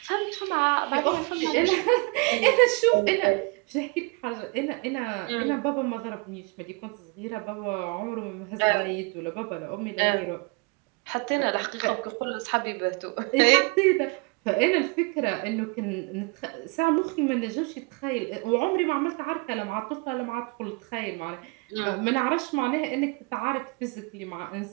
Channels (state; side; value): quieter; left; 29.3 dB